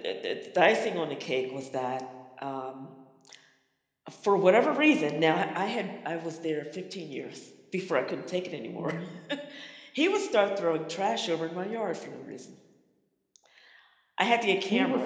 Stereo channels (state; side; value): identical; both; correlation 1.00